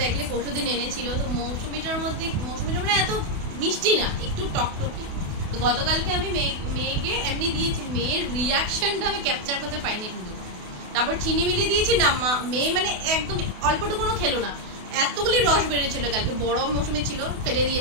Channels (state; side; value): late; left; 28 ms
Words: দেখলে পরশুদিন এনেছিল। তো মৌসুমিটা মানে এত মিষ্টি না, একটু টকটকি। তো গতকালকে আমি মেয়েকে এমনি দিয়েছি, মেয়ের রিয়াকশনটা আমি ক্যাপচার করতে পাইনি কিন্তু। তারপর চিনি মিলিয়ে দিয়েছি না, মেয়ে মানে একদম অল্পটুকুনো খেলো না, এতগুলি রস বেরিয়েছিল। কালকে বড় মৌসুমি ছিল, ফেলে